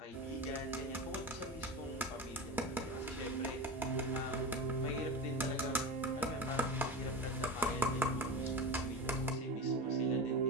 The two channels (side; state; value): both; normal; correlation 0.26